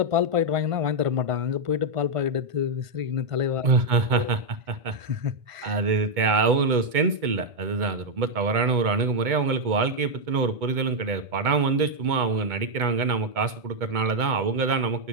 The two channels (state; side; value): late; left; 2.2 ms